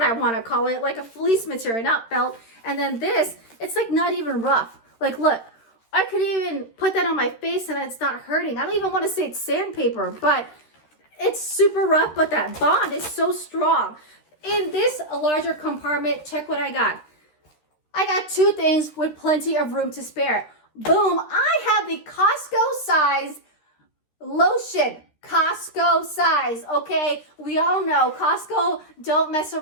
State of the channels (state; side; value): late; right; 13 ms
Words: I want to call it, like a fleece material, not felt. And then this, it's like not even rough. Like, look, I could even put that on my face and it's not hurting. I don't even want to say it's sandpaper, but it's super rough, but that bond is so strong. In this larger compartment, check what I got. I got 2 things with plenty of room to spare. Boom, I have the Costco size lotion. Costco size, okay? We all know Costco don't mess